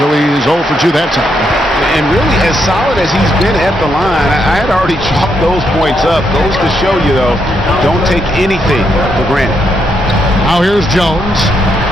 so he's 0 for 2 that time. And really, as solid as he's been at the line, I had already chalked those points up. Goes to show you, though, don't take anything for granted. Now here's Jones.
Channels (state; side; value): normal; both; correlation 0.79